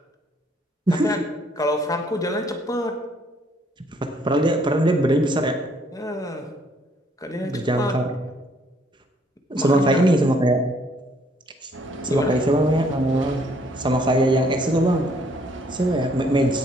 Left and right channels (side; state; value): both; normal; correlation 0.65